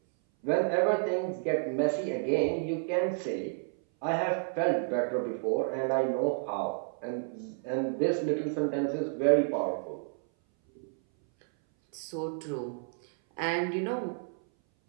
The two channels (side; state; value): left; silent; 57 dB below the other